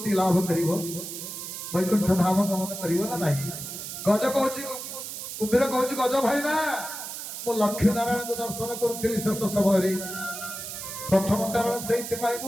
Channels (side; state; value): right; noise; hiss, 8 dB below the sound